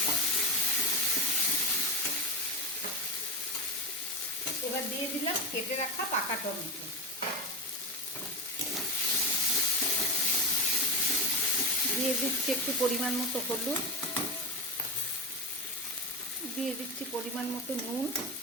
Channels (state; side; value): normal; both; correlation 0.15